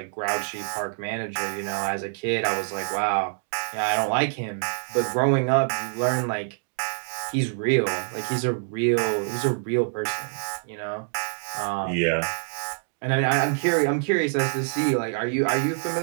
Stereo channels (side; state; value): left; silent; 61 dB below the other